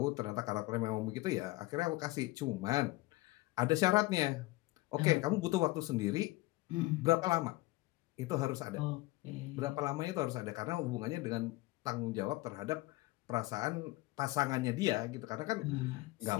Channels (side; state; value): right; quieter; 20.0 dB